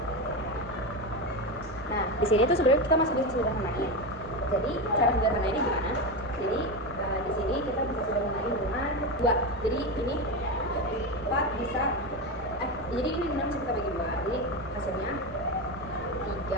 Nah, di sini tuh sebenarnya kita masih bisa sederhanain. Jadi cara sederhanainnya gimana? Jadi di sini kita bisa sederhanain dengan 2. Jadi ini 4 bisa jadi ini 6 bisa kita bagi 2. Jadi hasilnya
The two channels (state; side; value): normal; both; correlation 0.16